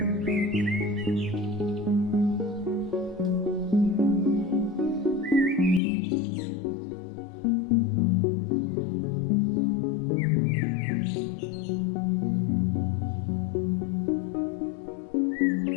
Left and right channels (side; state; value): right; drops out; at 5.8 s